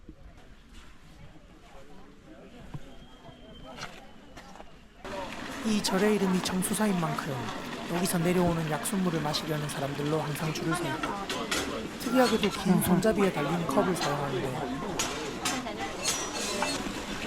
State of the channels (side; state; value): both; identical; correlation 1.00